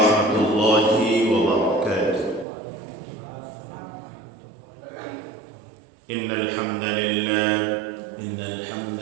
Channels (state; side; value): drops out; left; at 2.5 s